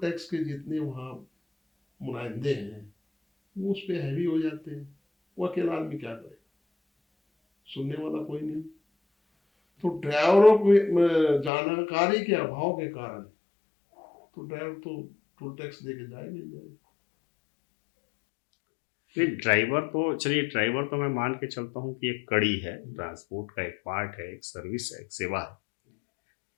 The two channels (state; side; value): drops out; right; at 11.5 s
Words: टैक्स के जितने वहां मुनाइंदे हैं वो उस पर हैवी हो जाते हैं। वो अकेला आदमी क्या करे, सुनने वाला कोई नहीं। तो ड्राइवरों को जानकारी के अभाव के कारण तो ड्राइवर तो टोल टैक्स दे के जाएगा ही जाएगा। ड्राइवर तो चलिए, ड्राइवर तो मैं मान के चलता हूँ कि एक कड़ी है, ट्रांसपोर्ट का एक पार्ट है, एक सर्विस है, एक सेवा है।